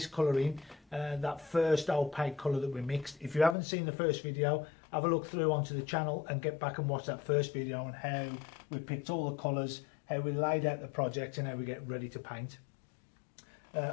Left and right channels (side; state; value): right; drops out; at 3.6 s